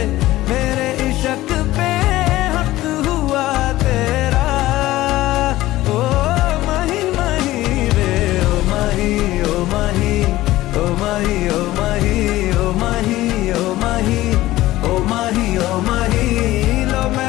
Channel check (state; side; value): quieter; right; 16.4 dB